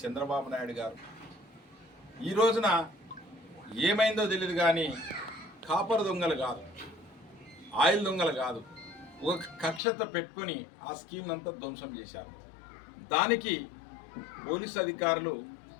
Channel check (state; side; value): drops out; right; at 9.8 s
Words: చంద్రబాబు నాయుడు గారు ఈ రోజున ఏమైందో తెలియదు కానీ కాపర్ దొంగలు కాదు, ఆయిల్ దొంగలు కాదు, ఒక కక్షత పెట్టుకొని ఆ స్కీమ్ అంతా ధ్వంసం చేశారు. దానికి పోలీసు అధికారులు